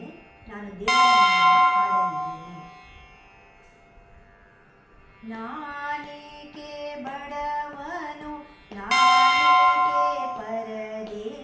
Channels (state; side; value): identical; both; correlation 1.00